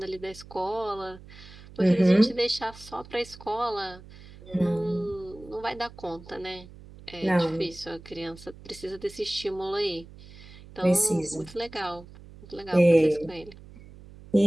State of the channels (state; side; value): noise; right; hum, 19 dB below the sound